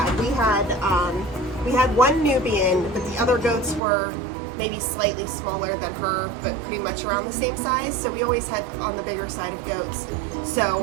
We had one Nubian, but the other goats were maybe slightly smaller than her, but pretty much around the same size. So we always had on the bigger side of goats.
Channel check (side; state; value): left; drops out; at 3.8 s